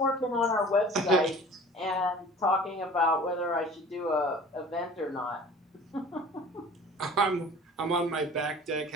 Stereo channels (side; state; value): both; normal; correlation 0.45